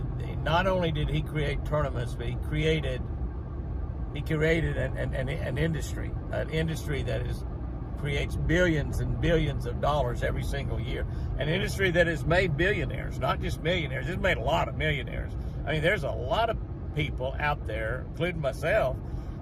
only did he create tournaments, but he created an industry that is creates billions and billions of dollars every single year. An industry that has made billionaires, not just millionaires. It's made a lot of millionaires. I mean, there's a lot of people out there, including myself,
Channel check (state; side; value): identical; both; correlation 1.00